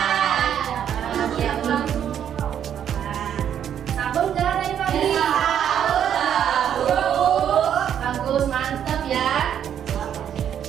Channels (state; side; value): quieter; left; 9.3 dB